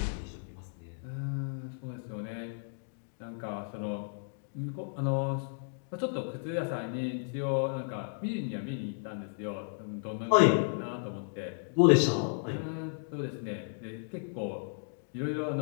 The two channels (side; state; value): right; silent; digital silence